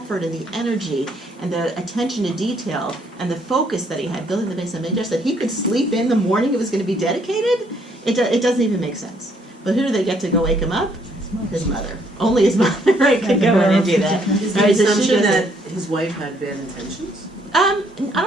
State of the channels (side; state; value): both; normal; correlation 0.68